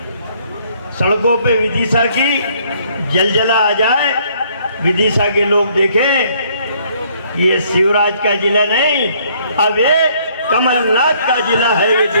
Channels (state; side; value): inverted; both; correlation -0.64